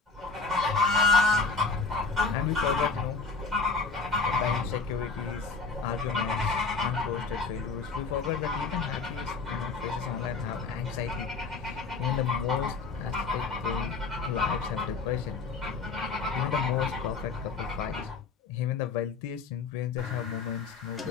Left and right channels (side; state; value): right; quieter; 4.4 dB